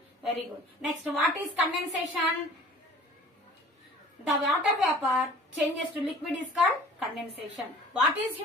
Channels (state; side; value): normal; both; correlation 0.47